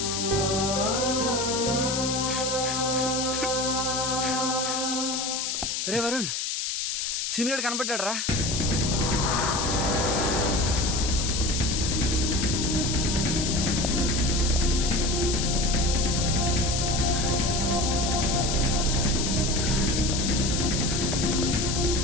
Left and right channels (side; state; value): left; noise; hiss, 1 dB below the sound